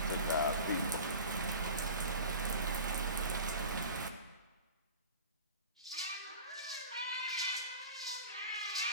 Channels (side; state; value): both; inverted; correlation -0.36